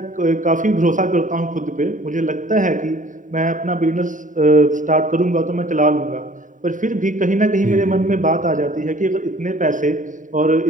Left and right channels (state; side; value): late; left; 0.38 ms